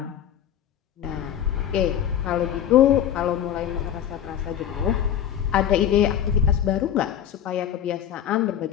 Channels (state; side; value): quieter; right; 10.1 dB